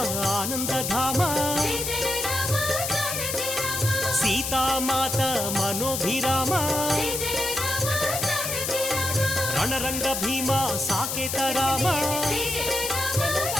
ఆనందధామ సీతామాత మనోభిరామ రణరంగ భీమ సాకేత రామ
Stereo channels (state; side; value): noise; left; hiss, 2 dB below the sound